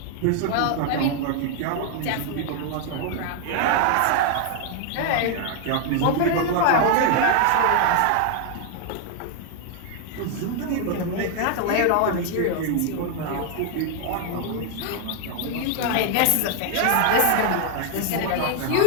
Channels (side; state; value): both; different; correlation 0.00